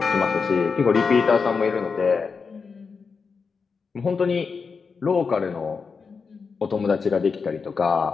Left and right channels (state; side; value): quieter; right; 5.2 dB